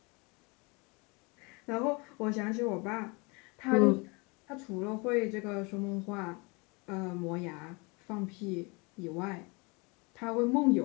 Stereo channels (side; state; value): right; quieter; 28.9 dB